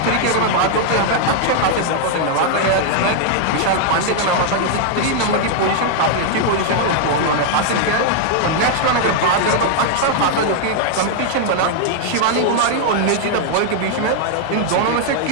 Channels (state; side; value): different; both; correlation 0.00